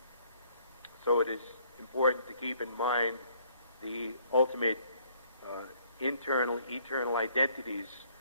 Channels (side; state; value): both; inverted; correlation -0.63